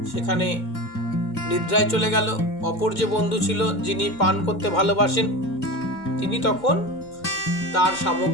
সেখানে নিদ্রায় চলে গেল। অপর যে বন্ধু ছিল যিনি পান করতে ভালোবাসেন, তিনি তখন তার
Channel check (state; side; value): late; right; 2.2 ms